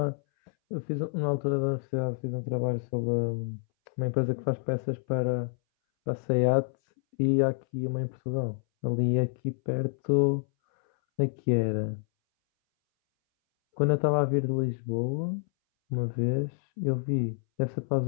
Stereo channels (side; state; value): right; silent; 59 dB below the other